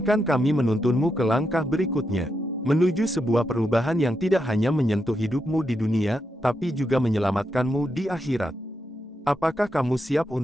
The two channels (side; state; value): both; normal; correlation 0.84